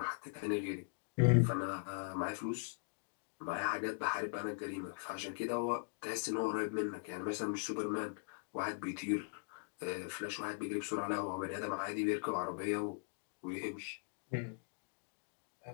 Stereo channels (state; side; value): silent; right; digital silence